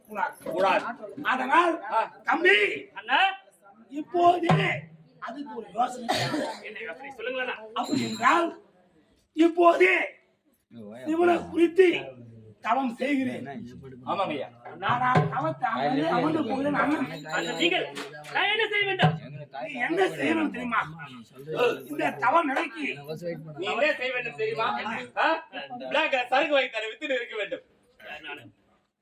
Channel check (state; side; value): identical; both; correlation 1.00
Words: அதனால் தம்பி இப்போதே அதுக்கு ஒரு யோசனை. சொல்லுங்களா? அப்படி என்றால் இப்போதே சிவனை குறித்து தவம் செய்கிறேன். ஆமாங்கய்யா. நான் தவத்தை அமர்ந்து போகிறேன். நீங்கள் நான் என்ன செய்ய வேண்டும்? நீ என்ன செய்யணும் தெரியுமா? இந்த தவம் நிலைக்கு நீ என்ன செய்ய வேண்டும் தெரியுமா? சரக்கு வாங்கி தர வித்து இருக்க வேண்டும்.